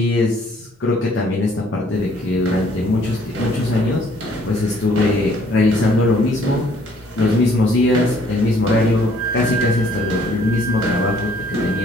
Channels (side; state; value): both; normal; correlation 0.61